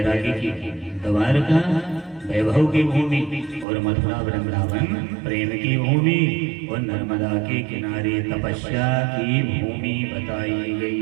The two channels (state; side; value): drops out; left; at 3.7 s